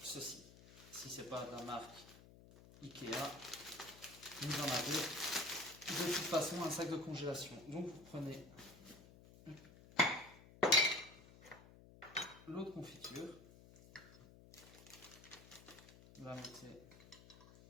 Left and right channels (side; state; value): left; noise; hum, 20 dB below the sound